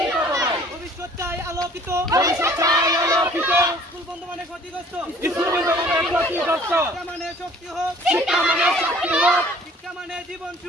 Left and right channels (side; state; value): both; normal; correlation 0.53